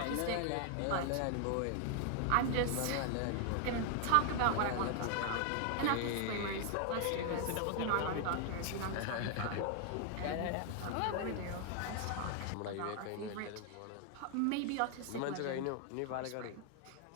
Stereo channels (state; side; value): different; both; correlation 0.00